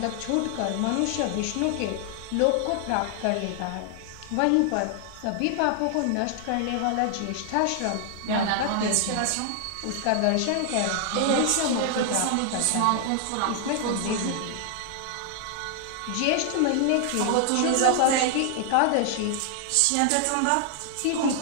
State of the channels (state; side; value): different; both; correlation 0.00